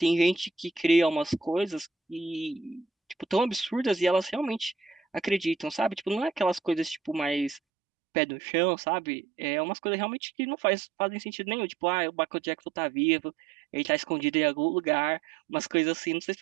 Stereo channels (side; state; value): left; drops out; at 7.6 s